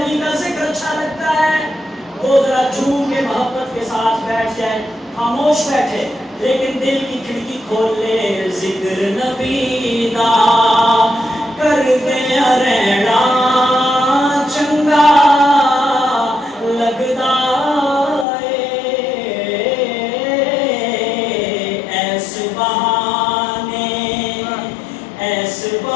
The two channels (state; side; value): drops out; right; at 18.2 s